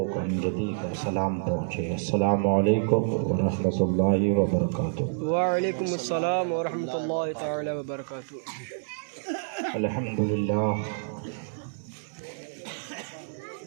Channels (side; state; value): left; silent; digital silence